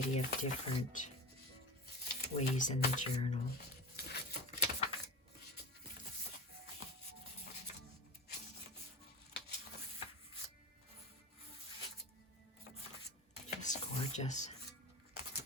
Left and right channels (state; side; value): normal; both; correlation 0.30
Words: of different ways in the journal. Gorgeous.